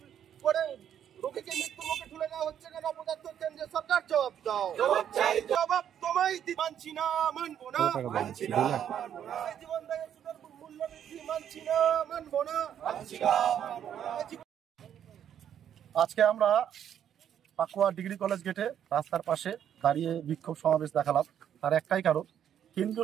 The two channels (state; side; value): quieter; left; 9.5 dB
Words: আজকে আমরা পাকুয়া ডিগ্রি কলেজ গেটে রাস্তার পাশে দাঁড়িয়ে বিক্ষোভ সমাবেশ দেখালাম। তার একটাই কারণ,